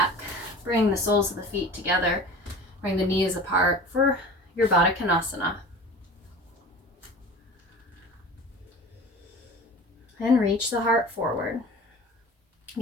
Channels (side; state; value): both; normal; correlation 0.38